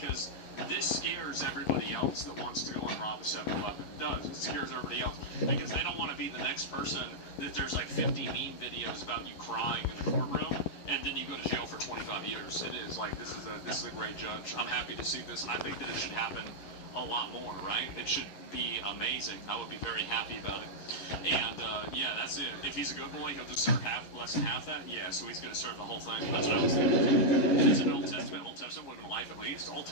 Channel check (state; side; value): late; right; 11 ms